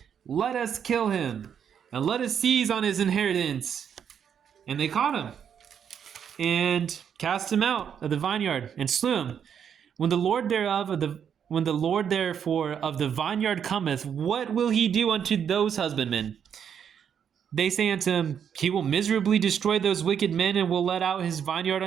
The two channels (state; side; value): quieter; left; 8.1 dB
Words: let us kill him, and let us seize on his inheritance. And they caught him, and cast him out of the vineyard, and slew him. When the Lord therefore of the vineyard cometh, what will he do unto those husbandmen? They say unto him, He will miserably destroy those wicked men, and will let out his vineyard